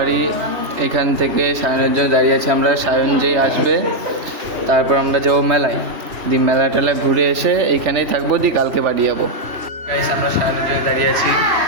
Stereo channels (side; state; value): left; late; 3.0 ms